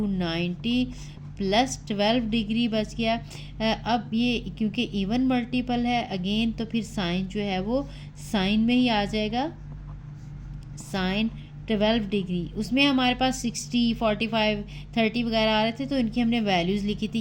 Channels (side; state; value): both; identical; correlation 1.00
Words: 90 प्लस 12 डिग्री बच गया। अब ये क्योंकि इवन मल्टीपल है अगेन, तो फिर साइन जो है वो साइन में ही आ जाएगा, साइन 12 डिग्री। उसमें हमारे पास 60, 45, 30 वगैरह आ रहे थे, तो इनकी हमने वैल्यूज़ लिखी थी।